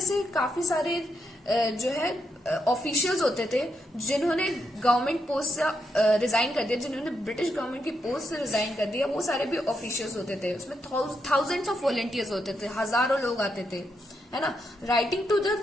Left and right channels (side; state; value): both; normal; correlation 0.81